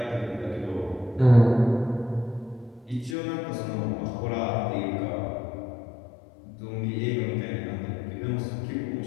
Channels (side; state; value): right; drops out; at 3.2 s